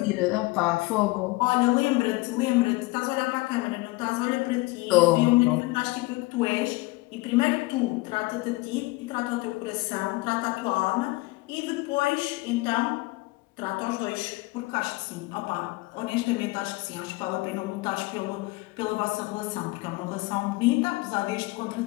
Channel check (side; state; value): right; quieter; 22.5 dB